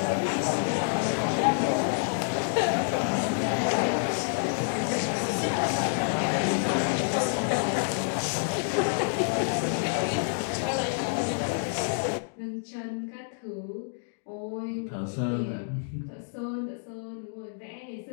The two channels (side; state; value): right; silent; digital silence